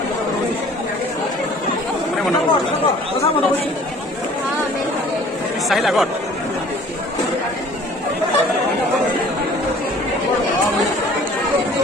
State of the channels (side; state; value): both; normal; correlation 0.51